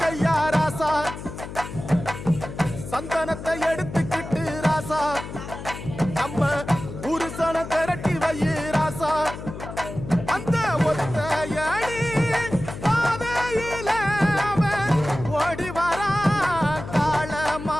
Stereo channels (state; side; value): noise; left; hum, 10 dB below the sound